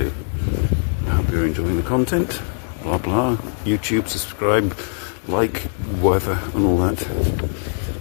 I hope you're enjoying the content, blah blah, YouTube, subscribe, like, whatever, and all that.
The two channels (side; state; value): right; silent; digital silence